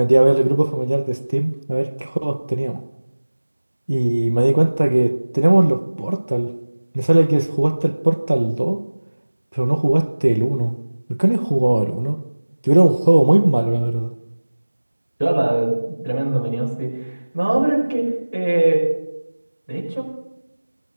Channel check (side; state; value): both; inverted; correlation -1.00